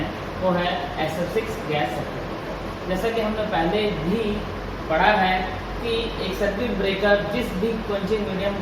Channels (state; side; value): identical; both; correlation 1.00